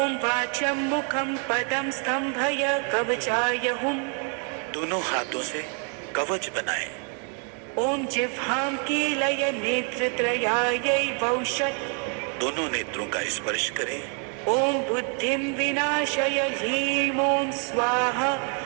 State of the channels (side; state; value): left; quieter; 39.2 dB